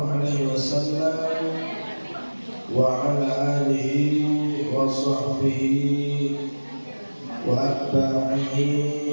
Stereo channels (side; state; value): both; inverted; correlation -1.00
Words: عليه وسلم وعلى آله وصحبه وأتباعه